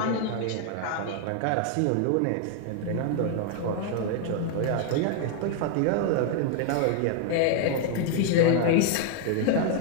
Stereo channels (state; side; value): different; both; correlation 0.00